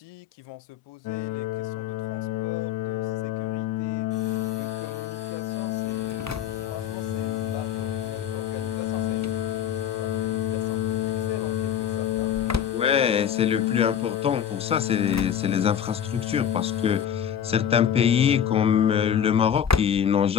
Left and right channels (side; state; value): right; quieter; 9.1 dB